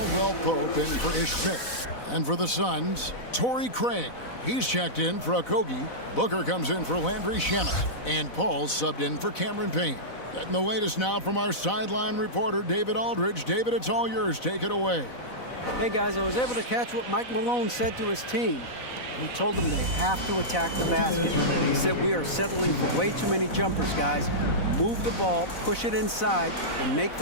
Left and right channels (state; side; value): late; right; 4.0 ms